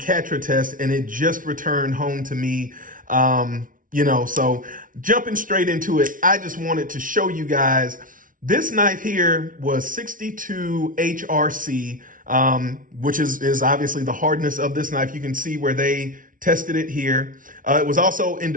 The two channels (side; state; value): left; late; 0.39 ms